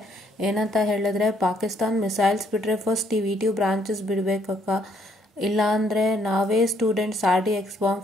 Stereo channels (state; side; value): normal; both; correlation 0.68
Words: ಏನಂತ ಹೇಳಿದ್ರೆ, ಪಾಕಿಸ್ತಾನ್ ಮಿಸೈಲ್ಸ್ ಬಿಟ್ಟರೆ ಫಸ್ಟ್ ಈ ವಿ2 ಬ್ರಾಂಚಸ್ ಬಿಡಬೇಕಕ್ಕ, ಇಲ್ಲಾಂದರೆ ನಾವೇ ಸ್ಟೂಡೆಂಟ್ಸ್ RDX